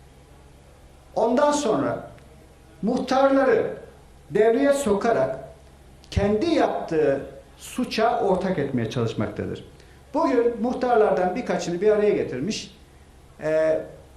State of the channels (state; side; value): identical; both; correlation 1.00